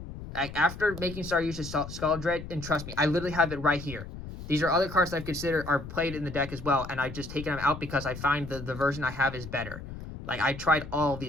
After making Saryuja Skaldred, and trust me, I literally have it right here. These are other cards that I've considered are played in the deck as well, and I've just taken them out because I find the version I have is better. Like, I tried all of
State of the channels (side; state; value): left; noise; rumble, 11 dB below the sound